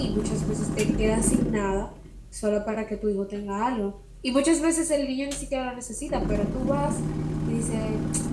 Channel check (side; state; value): both; identical; correlation 1.00